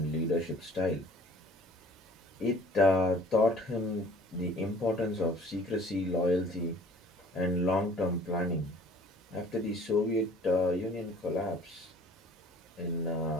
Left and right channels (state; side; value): normal; both; correlation 0.52